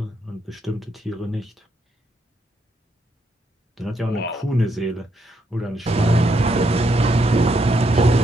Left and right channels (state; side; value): normal; both; correlation 0.77